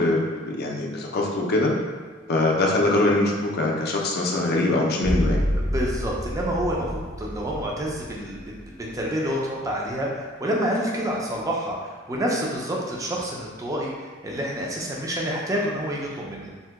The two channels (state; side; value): normal; both; correlation 0.52